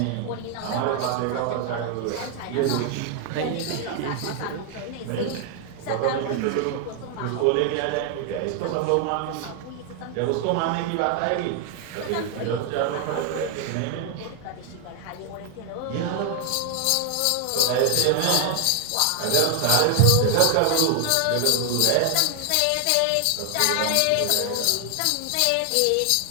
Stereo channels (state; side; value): different; both; correlation 0.00